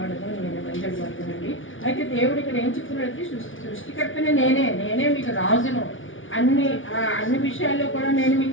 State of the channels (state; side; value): late; right; 0.57 ms